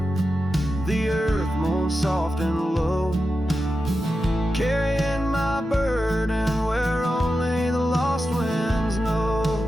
the earth moans soft and low, carrying my burden where only the lost winds know.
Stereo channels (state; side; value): normal; both; correlation 0.91